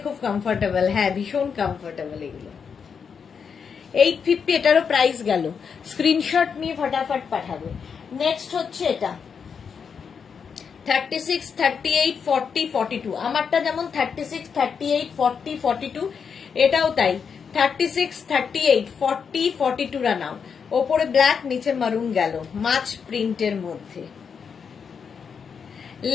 খুব কমফোর্টেবল। হ্যাঁ, ভীষণ কমফোর্টেবল এগুলো। 850 এটারও প্রাইস গেল। স্ক্রিনশট নিয়ে ফটাফট পাঠাবে। নেক্সট হচ্ছে এটা 36, 38, 40, 42। আমারটা যেমন 36, 38, 40, 42, এটাও তাই 36, 38, 40, 42 রা নাও। ওপরে ব্ল্যাক নিচে মারুন গেল, মাছ প্রিন্টের মধ্যে।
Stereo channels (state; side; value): quieter; right; 6.4 dB